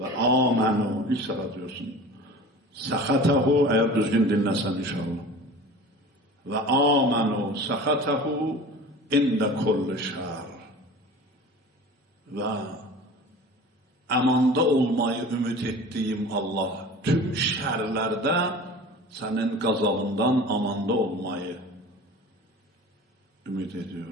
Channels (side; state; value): both; normal; correlation 0.39